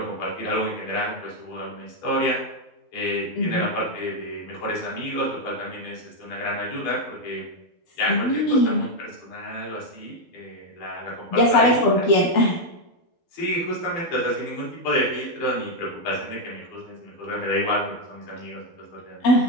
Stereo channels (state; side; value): late; right; 12 ms